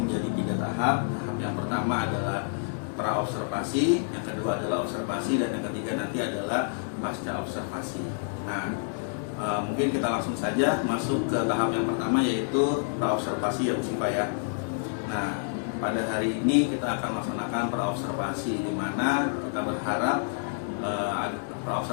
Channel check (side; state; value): right; silent; digital silence